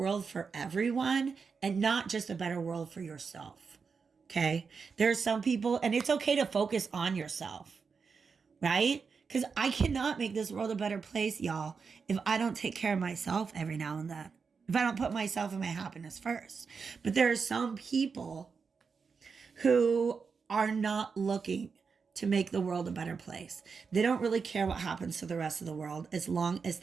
for everyone and not just a better world for yourself. Okay? There are some people, and it's okay to focus on yourself, right? Because I cannot make this world a better place, y'all, if I don't take care of myself every now and then. If I don't put myself and my happiness first. But there are some people who are not looking to make the world a better place. They don't really care what happens to the rest of the world as long as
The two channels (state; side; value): quieter; left; 5.4 dB